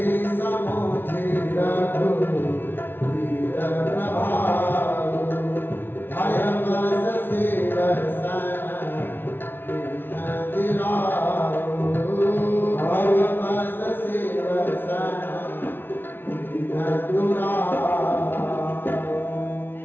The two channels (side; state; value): right; late; 0.10 ms